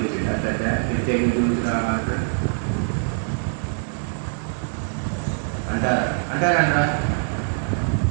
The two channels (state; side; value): silent; left; 62 dB below the other